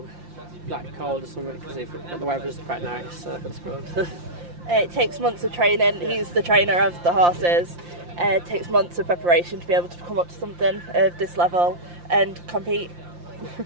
cold or something, because the weather's quite nice, so that's good. It takes months of training. He's the trainer of the horses. It takes months of preparation to be able to come up to something of this level and compete.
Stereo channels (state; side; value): late; left; 5.7 ms